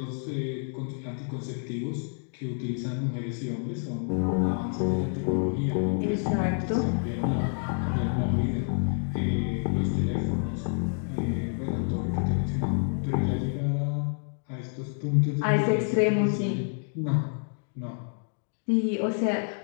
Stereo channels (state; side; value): silent; right; 58 dB below the other